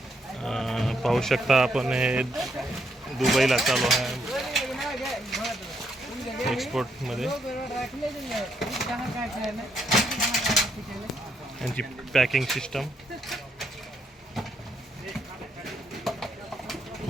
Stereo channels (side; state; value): both; normal; correlation 0.75